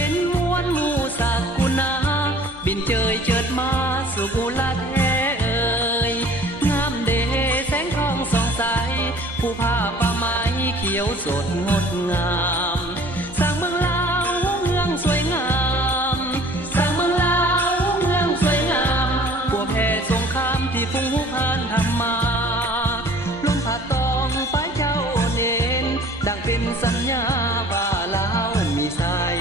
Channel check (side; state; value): both; normal; correlation 0.50